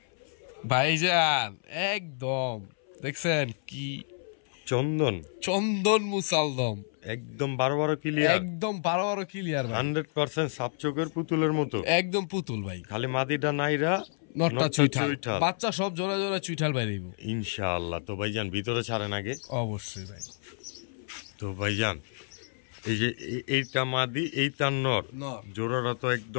ভাইজান একদম দেখছেন কি চন্দন মুসালদম, একদম 12 ক্লিয়ার, একদম 12 ক্লিয়ার ভাই, 100% সাপ চোখের পুতুলের মতো, একদম পুতুল ভাই। খালি মাদিটা নাইরা, নটটা চুইঠাল, বাচ্চা সব জোড়া জোড়া চুইঠাল বাইরেইব ইনশাআল্লাহ। তো ভাইজান ভিতরে ছাড়েন আগে? অবশ্যই ভাই। তো ভাইজান এই যে এইটা মাদি, এইটা নর, জোড়াটা তো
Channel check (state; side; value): silent; right; 57 dB below the other